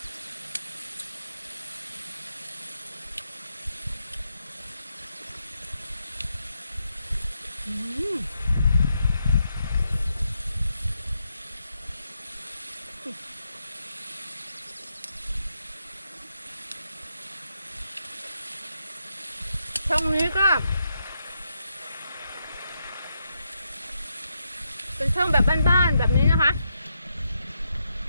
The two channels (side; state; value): both; inverted; correlation -0.82